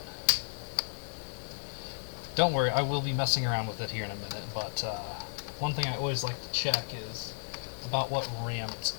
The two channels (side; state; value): right; silent; digital silence